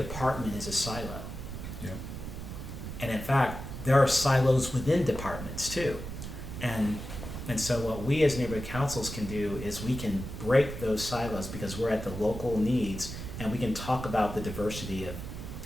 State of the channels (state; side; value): noise; right; rumble, 8 dB below the sound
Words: is a silo. Yeah. And in fact, there are silos within departments too. And so what we as neighborhood councils can do is we can break those silos because we're at the local needs and we can talk about the diversity